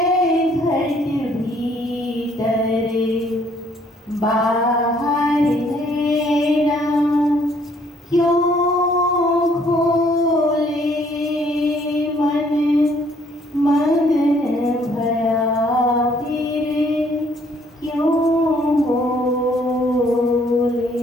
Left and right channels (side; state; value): both; normal; correlation 0.64